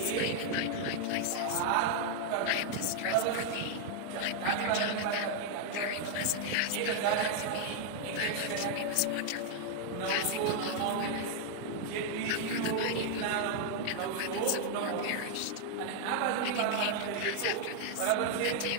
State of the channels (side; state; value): both; different; correlation 0.00